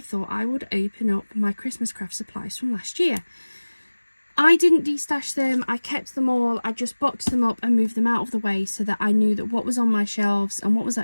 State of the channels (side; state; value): both; inverted; correlation -1.00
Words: I would open up my Christmas craft supplies from last year. I didn't destash them, I kept them all. I just boxed them up and moved them out of the way so that I knew that what was on my shelves and what was